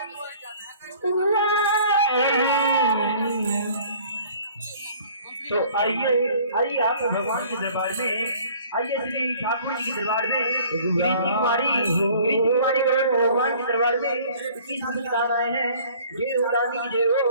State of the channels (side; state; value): both; inverted; correlation -0.52